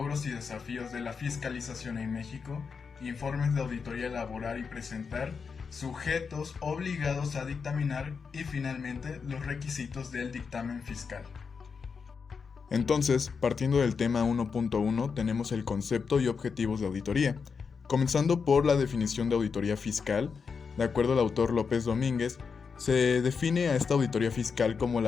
y desafíos de la fiscalización en México, informes de auditoría elaborar y presentar, sujetos obligados a dictaminar y finalmente los requisitos del dictamen fiscal. Entonces, partiendo del tema 1.1, tenemos el concepto y objetivos de auditoría. Comenzando por la definición de auditoría fiscal, de acuerdo al autor López Domínguez, se define a esta auditoría fiscal como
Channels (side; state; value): right; quieter; 5.6 dB